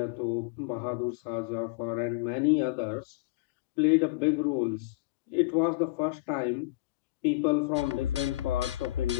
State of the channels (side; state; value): right; quieter; 19.2 dB